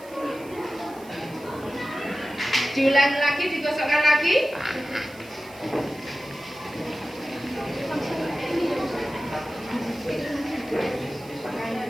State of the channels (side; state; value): right; noise; hiss, 22 dB below the sound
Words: Diulangi lagi, digosokkan lagi.